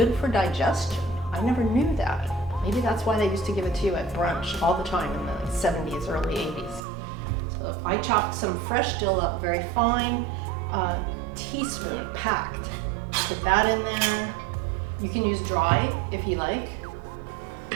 for digestion. I never knew that. Maybe that's why they used to give it to you at brunch all the time in the 70s, early 80s. So I chopped some fresh dill up very fine, teaspoon packed. Put that in there. You can use dry if you like.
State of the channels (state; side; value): drops out; left; at 6.8 s